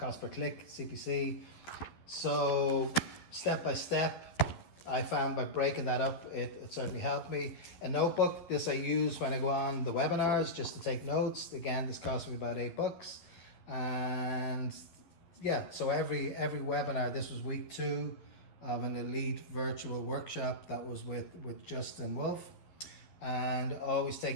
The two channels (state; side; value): late; right; 11 ms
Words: per click, CPC. So step by step, I found by breaking that up, it certainly helped me. A notebook, this I use when I go on the webinars just to take notes. Again, this cost me about $8. And yeah, so every webinar, this was week 2 of an elite virtual workshop that was with Justin Wolf. And always